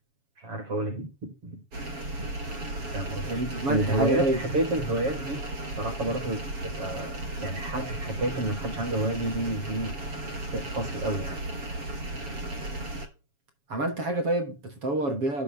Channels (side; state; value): left; late; 7.2 ms